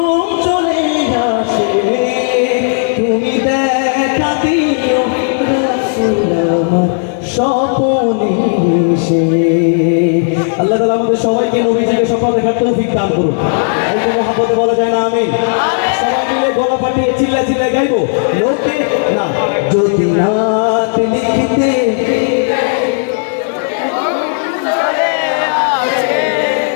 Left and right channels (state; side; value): silent; right; digital silence